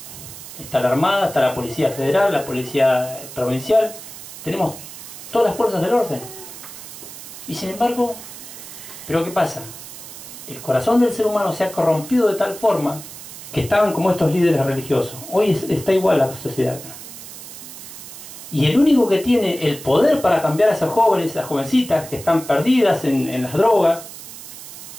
está la Armada, está la Policía Federal, la Policía Provincial. Tenemos todas las fuerzas del orden. Y sin embargo, ¿pero qué pasa? El corazón del ser humano se ha corrompido de tal forma que estaban como estos líderes religiosos. Hoy está igual la sociedad acá. Y el único que tiene el poder para cambiar a esos jóvenes, esas jovencitas que están perdidas en las drogas,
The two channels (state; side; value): noise; right; hiss, 14 dB below the sound